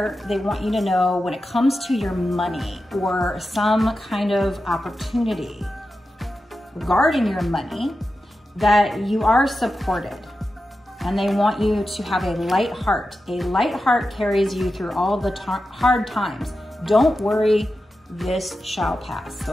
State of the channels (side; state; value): both; normal; correlation 0.91